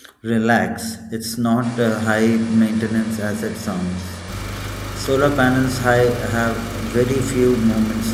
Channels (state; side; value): identical; both; correlation 1.00